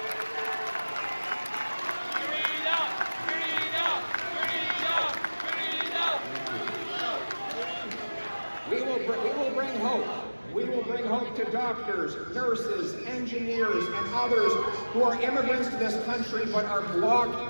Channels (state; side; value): inverted; both; correlation -1.00